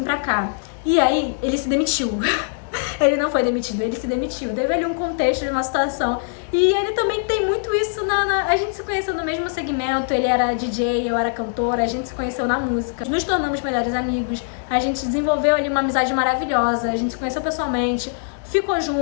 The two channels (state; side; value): silent; right; digital silence